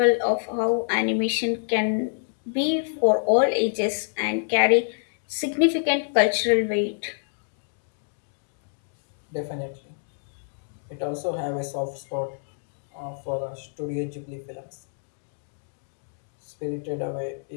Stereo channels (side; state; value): right; silent; digital silence